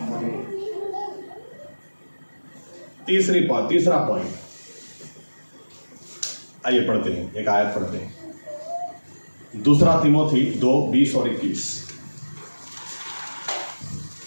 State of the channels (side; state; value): both; inverted; correlation -1.00